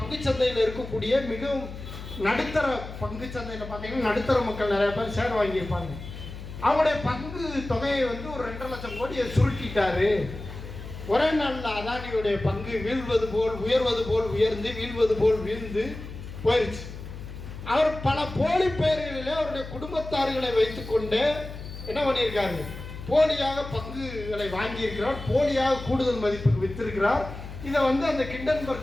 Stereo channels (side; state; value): left; noise; hum, 11 dB below the sound